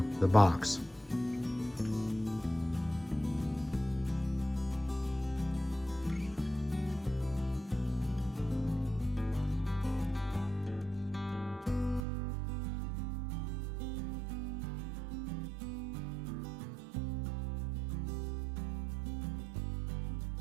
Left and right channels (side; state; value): left; drops out; at 12.0 s